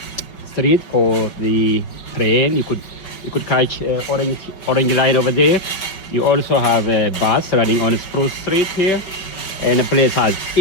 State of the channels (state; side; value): late; right; 5.3 ms